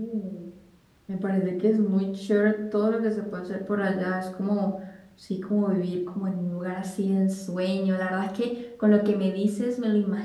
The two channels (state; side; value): identical; both; correlation 1.00